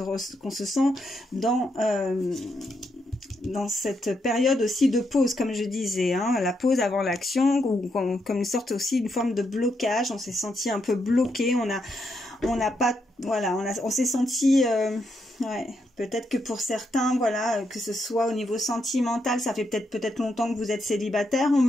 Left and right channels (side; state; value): both; normal; correlation 0.80